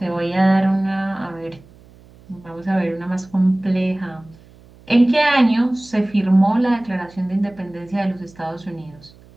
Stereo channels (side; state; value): right; noise; hum, 25 dB below the sound